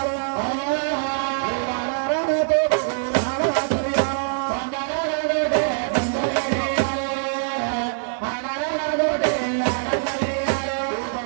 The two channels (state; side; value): silent; left; digital silence